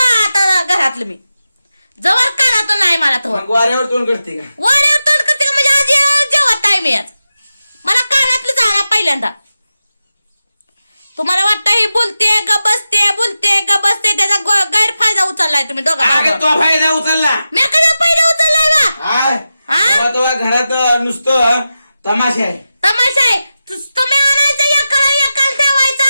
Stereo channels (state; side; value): inverted; both; correlation -0.92